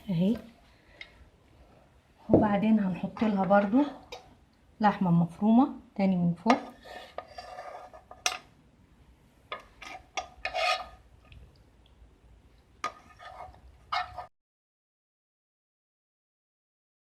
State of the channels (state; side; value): identical; both; correlation 1.00